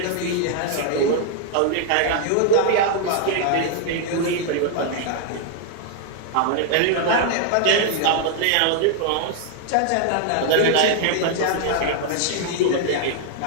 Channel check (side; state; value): both; different; correlation 0.00